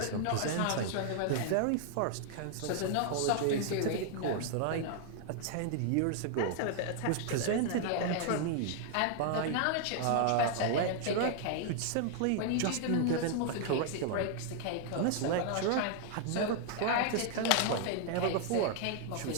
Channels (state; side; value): different; both; correlation 0.00